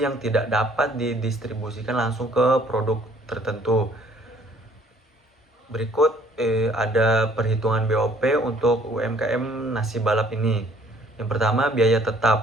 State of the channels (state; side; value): normal; both; correlation 0.60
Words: yang tidak dapat didistribusikan langsung ke produk tertentu. Berikut ada perhitungan BOP untuk UMKM nasi balap ini. Yang pertama, biaya